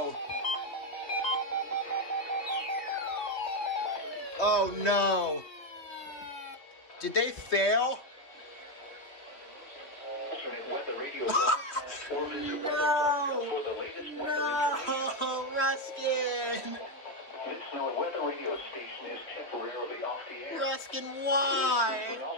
Oh no. Did they fail? No, Ruskin. This weather radio station is temporarily off the air. Ruskin, why? For an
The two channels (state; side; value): late; right; 2.8 ms